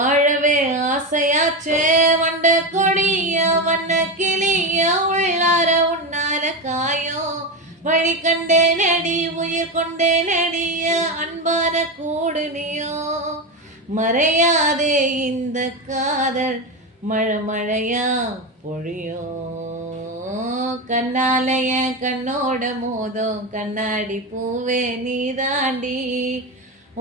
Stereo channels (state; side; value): normal; both; correlation 0.16